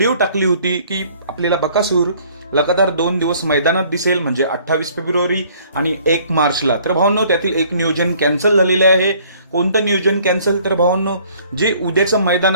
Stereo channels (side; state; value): both; inverted; correlation -0.57